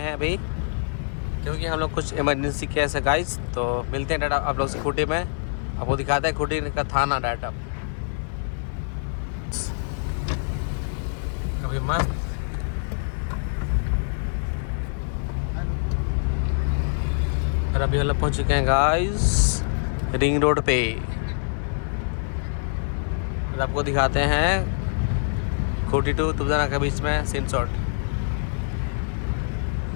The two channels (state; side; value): silent; right; 62 dB below the other